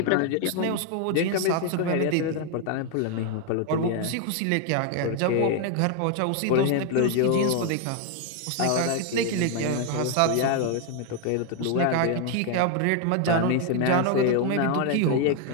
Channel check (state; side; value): different; both; correlation 0.01